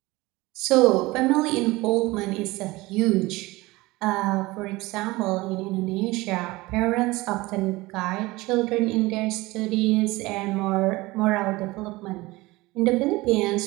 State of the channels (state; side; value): quieter; left; 20.9 dB